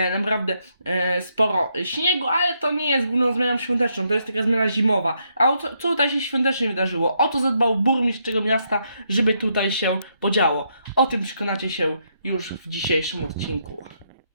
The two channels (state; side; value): inverted; both; correlation -0.77